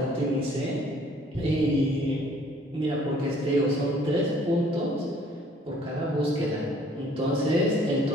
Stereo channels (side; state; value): both; normal; correlation 0.58